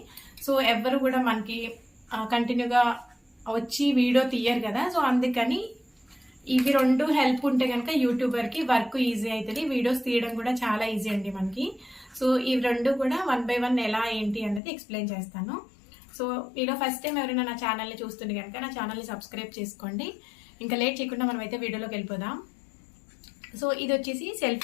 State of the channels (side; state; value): right; drops out; at 14.6 s